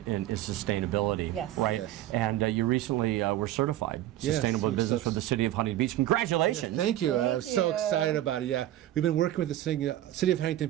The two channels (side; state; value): left; quieter; 13.6 dB